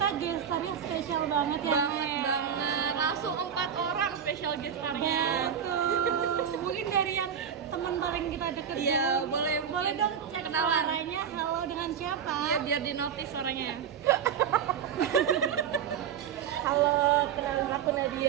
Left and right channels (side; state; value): left; quieter; 8.0 dB